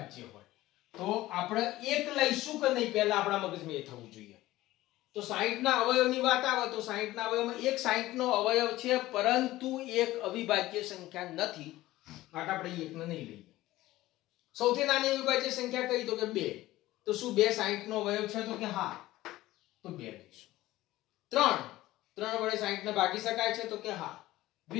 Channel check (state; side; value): quieter; right; 16.7 dB